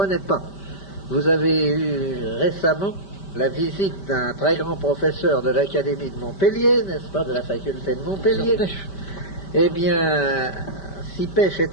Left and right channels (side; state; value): right; late; 5.1 ms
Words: pas. Vous avez eu récemment la visite d'un très grand professeur de l'Académie de Montpellier, n'est-ce pas, de la faculté de Montpellier. Eh bien, si Pêche